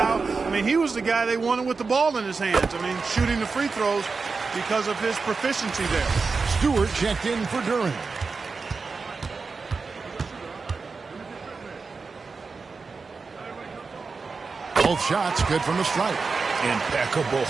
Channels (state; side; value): quieter; left; 4.5 dB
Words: I mean, he was the guy they wanted with the ball in his hands. I mean, shooting the free throws because of his proficiency there. Stewart checked in for Duran. Both shots good from the stripe. Impeccable